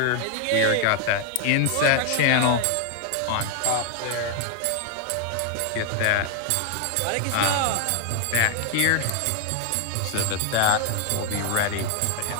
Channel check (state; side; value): different; both; correlation 0.00